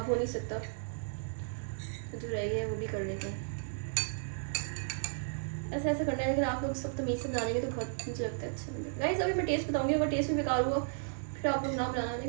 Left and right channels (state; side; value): silent; left; digital silence